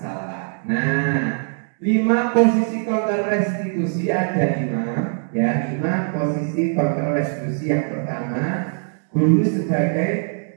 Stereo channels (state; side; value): silent; left; 60 dB below the other